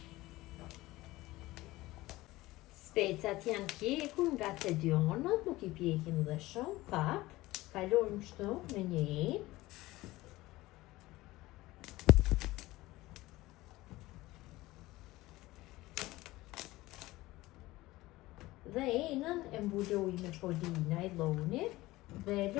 Specat janë pjekur nga të dy anët, nuk I pjekim dhe shumë, pak. Kalojmë kështu në një enë. Dhe enën e mbuloj me polina I llonit dhe e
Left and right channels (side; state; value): right; quieter; 18.6 dB